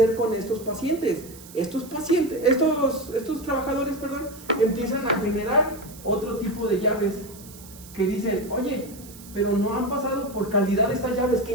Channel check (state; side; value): noise; right; hiss, 19 dB below the sound